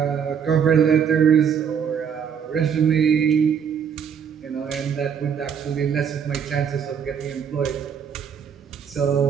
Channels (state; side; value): quieter; left; 7.5 dB